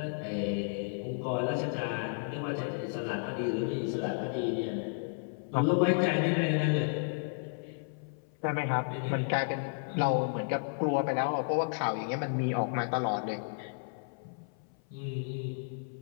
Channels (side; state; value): right; silent; 56 dB below the other